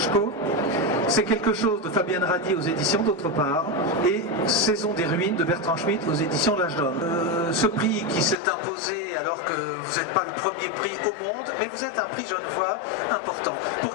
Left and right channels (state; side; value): drops out; right; at 8.3 s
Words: C'est quelque chose de Fabienne Radi aux éditions d'autre part, et Saison des ruines de Bertrand Schmitt aux éditions L'Âge d'Homme. Ce prix qui s'est imposé alors que vous n'êtes pas le premier prix au monde, mais vous êtes un prix Genevois important. Pour